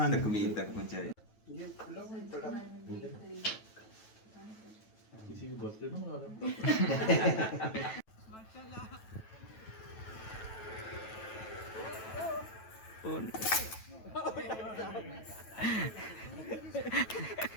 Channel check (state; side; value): late; right; 9.1 ms